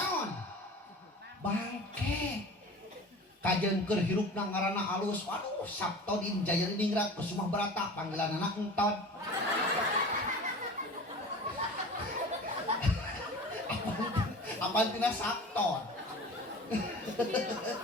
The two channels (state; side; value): normal; both; correlation 0.38